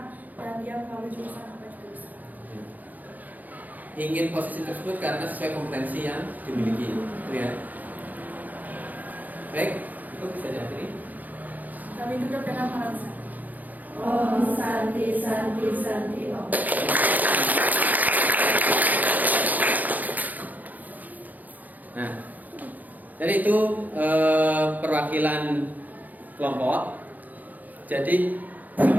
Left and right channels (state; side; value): late; left; 0.082 ms